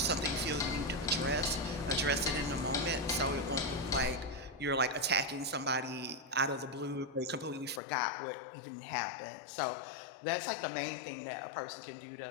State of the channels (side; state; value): right; drops out; at 7.8 s